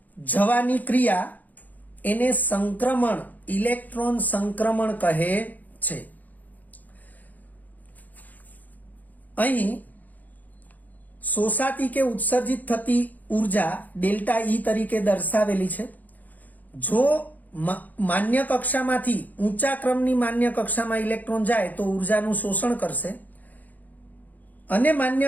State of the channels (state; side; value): late; right; 0.081 ms